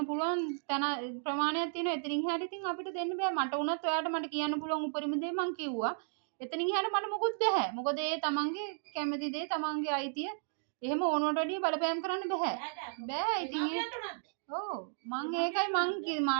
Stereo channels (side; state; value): left; silent; digital silence